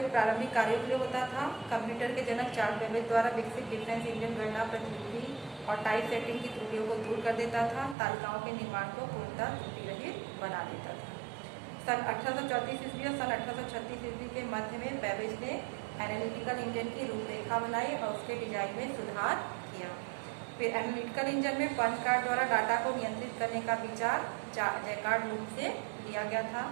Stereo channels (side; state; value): left; drops out; at 8.0 s